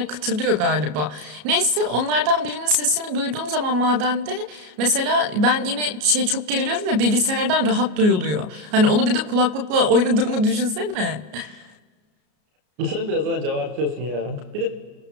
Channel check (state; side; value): late; left; 33 ms